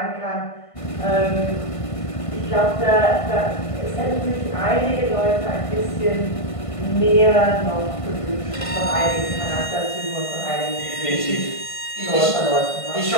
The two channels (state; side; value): late; right; 1.5 ms